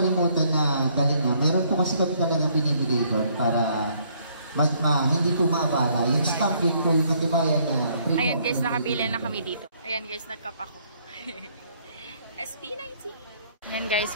na galing na. Meron po kasi kami talagang binibigay doon para hindi po maabala. Yung stop, yun po yung katibayan na free. Ayan guys, nakapila na kami dito. Ayan guys, nagkap ako. SP19. Ayan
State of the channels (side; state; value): both; inverted; correlation -0.66